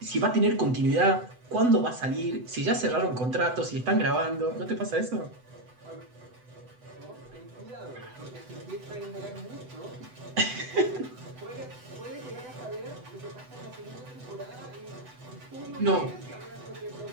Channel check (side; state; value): left; late; 8.0 ms